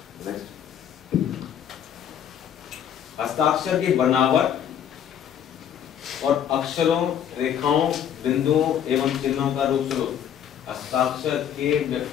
हस्ताक्षर की बनावट और अक्षरों, रेखाओं, बिंदुओं एवं चिन्हों का रूप स्वरूप हस्ताक्षर के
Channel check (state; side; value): quieter; right; 9.3 dB